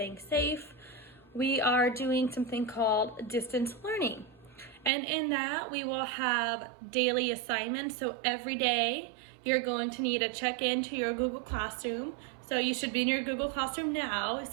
safe, we are doing something called distance learning. And in that, we will have daily assignments. So every day, you're going to need to check into your Google Classroom. So you should be in your Google Classroom now,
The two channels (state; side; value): drops out; left; at 4.9 s